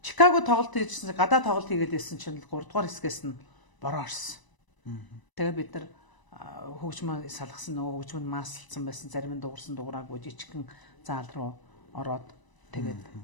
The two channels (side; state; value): right; late; 1.0 ms